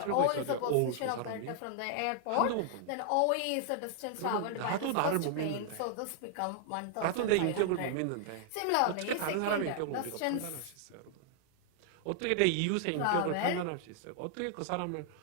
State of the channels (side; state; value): both; different; correlation -0.01